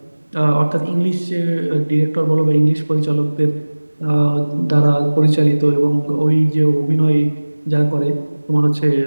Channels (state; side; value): inverted; both; correlation -1.00